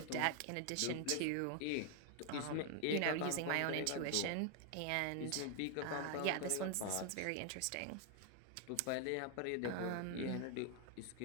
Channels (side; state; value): both; different; correlation 0.00